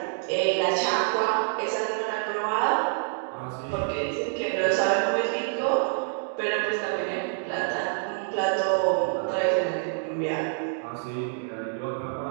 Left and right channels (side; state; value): left; silent; digital silence